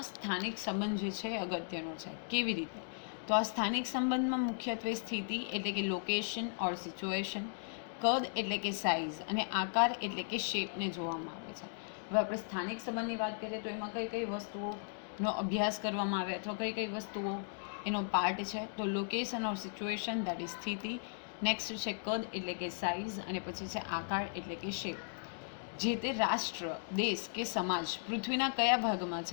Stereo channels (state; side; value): silent; right; digital silence